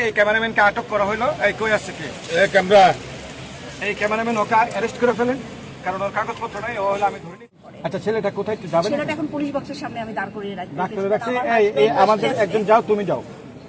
এই ক্যামেরাম্যানকে আটক করা হলো। এই কই আসছে কি ক্যামেরা এই ক্যামেরাম্যান ওকে অ্যারেস্ট করে ফেলেন, কারণ ওর কাগজপত্র নাই। ও হলো আমি ধরে নিই। আচ্ছা, ছেলেটা কোথায় একটু যাবেন? ছেলেটা এখন পুলিশ বক্সের সামনে আমি দাঁড় করিয়ে রাখছি। এই আমাদের একজন যাও, তুমি যাও,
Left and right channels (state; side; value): identical; both; correlation 1.00